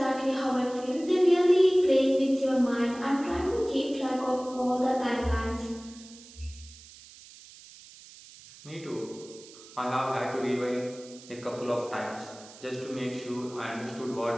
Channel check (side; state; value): right; noise; hiss, 20 dB below the sound